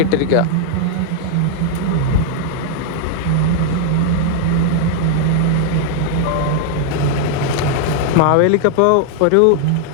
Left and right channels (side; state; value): both; different; correlation 0.00